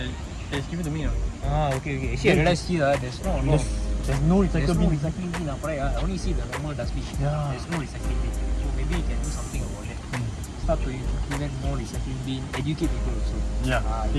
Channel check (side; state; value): both; identical; correlation 1.00